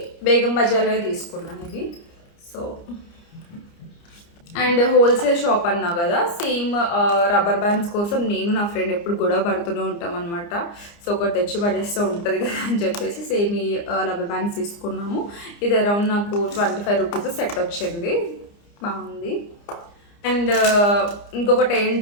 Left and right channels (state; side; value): late; right; 29 ms